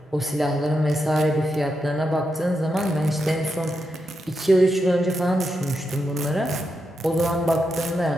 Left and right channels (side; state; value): both; normal; correlation 0.85